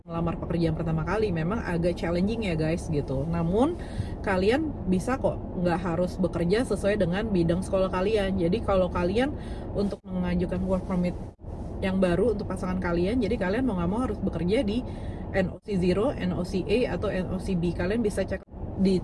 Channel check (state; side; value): identical; both; correlation 1.00